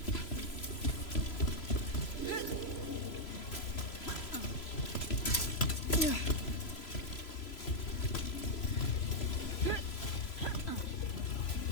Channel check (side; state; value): right; late; 3.0 ms